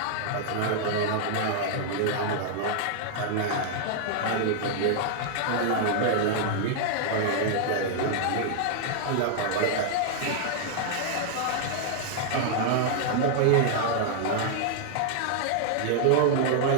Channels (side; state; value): both; different; correlation -0.01